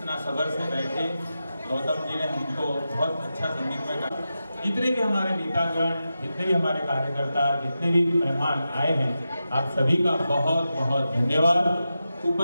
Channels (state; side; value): inverted; both; correlation -0.91